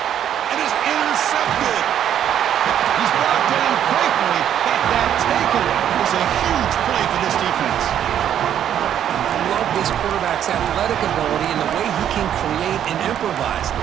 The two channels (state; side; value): quieter; left; 10.0 dB